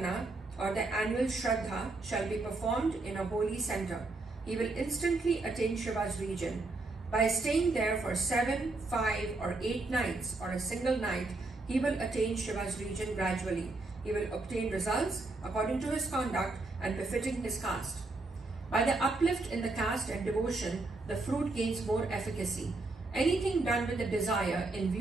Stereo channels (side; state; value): left; quieter; 3.3 dB